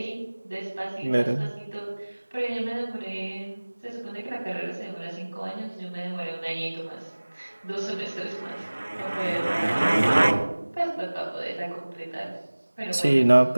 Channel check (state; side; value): inverted; both; correlation -1.00